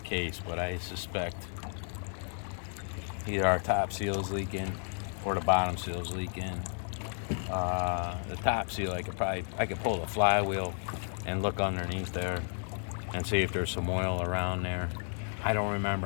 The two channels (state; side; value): silent; right; 56 dB below the other